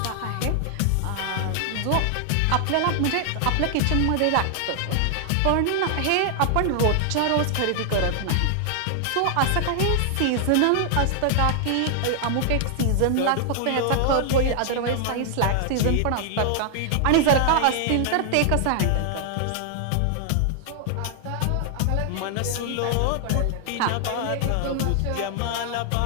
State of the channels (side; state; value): both; different; correlation 0.00